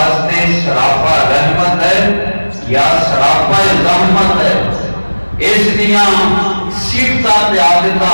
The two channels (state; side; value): inverted; both; correlation -1.00